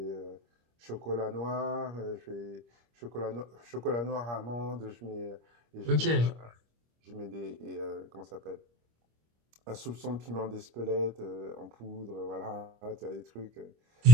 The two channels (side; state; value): left; late; 25 ms